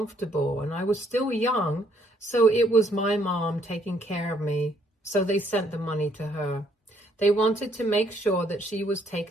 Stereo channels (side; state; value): both; normal; correlation 0.68